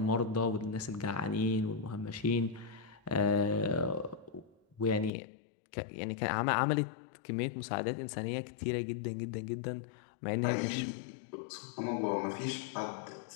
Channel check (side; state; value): right; drops out; at 5.1 s